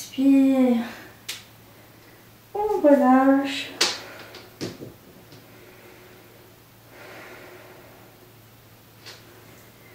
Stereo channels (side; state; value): both; identical; correlation 1.00